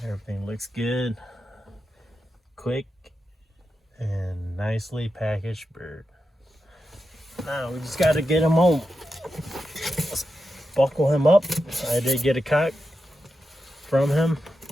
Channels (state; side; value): normal; both; correlation 0.89